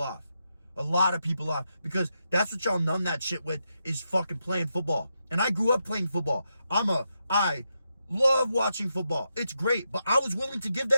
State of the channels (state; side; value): inverted; both; correlation -0.84